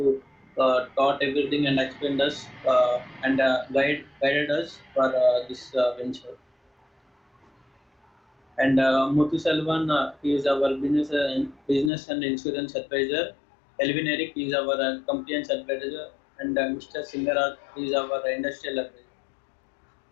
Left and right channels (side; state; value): right; drops out; at 11.9 s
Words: taught everything and explained us and guided us for this venture. And Muthu Selvan, he is our business and insurance advisor. Elvin Eric is our compliance advisor, and Mr. Singaraj is our industrial advisor.